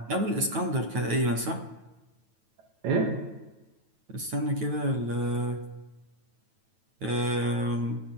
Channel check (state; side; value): late; left; 9.1 ms